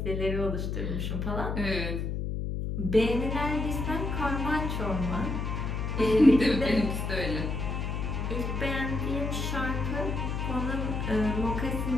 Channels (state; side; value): noise; left; hum, 2 dB below the sound